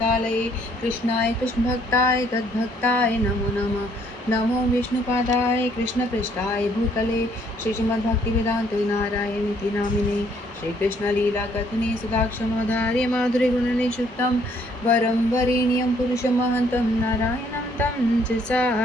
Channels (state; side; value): normal; both; correlation 0.65